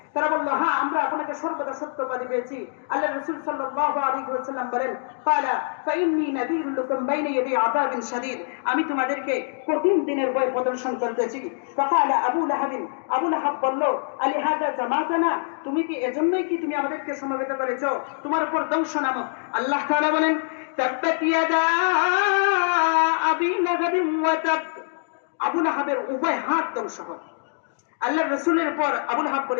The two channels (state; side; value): silent; right; digital silence